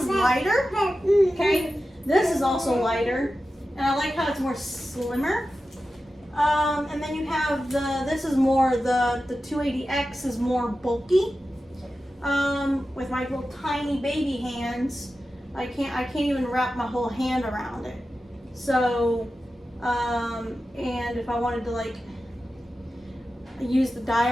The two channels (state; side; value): normal; both; correlation 0.93